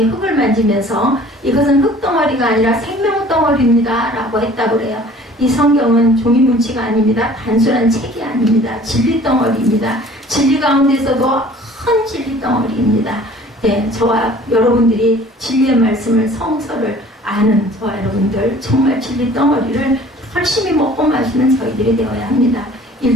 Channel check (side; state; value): both; normal; correlation 0.50